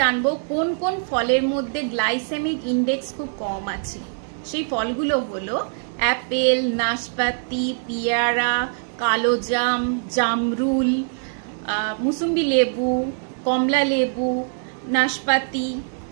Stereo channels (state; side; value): silent; left; 63 dB below the other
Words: জানবো কোন কোন ফলের মধ্যে গ্লাইসেমিক ইন্ডেক্স খুব কম আছে। সেই ফলগুলো হলো অ্যাপেল, নাশপাতি, পেয়ারা, কালোজাম, জামরুল, মুসুম্বি লেবু, কমলা লেবু, নাশপাতি,